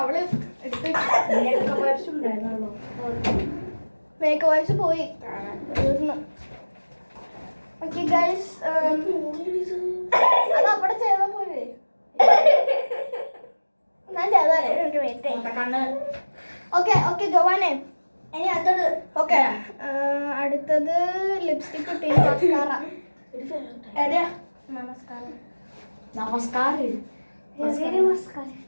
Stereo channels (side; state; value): both; inverted; correlation -1.00